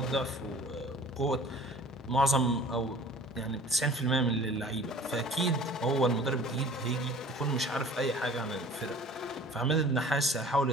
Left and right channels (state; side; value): normal; both; correlation 0.46